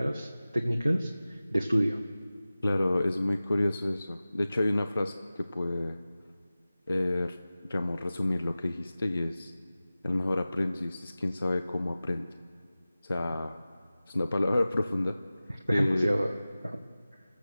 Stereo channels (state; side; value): inverted; both; correlation -0.96